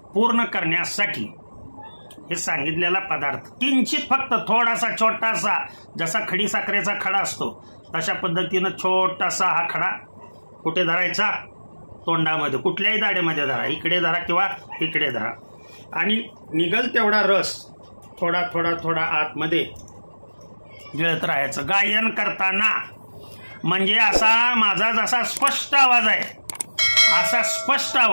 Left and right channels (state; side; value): inverted; both; correlation -1.00